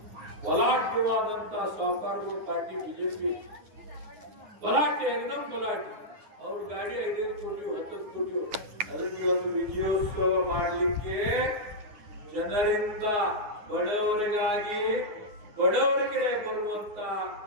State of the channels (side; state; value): left; late; 9.7 ms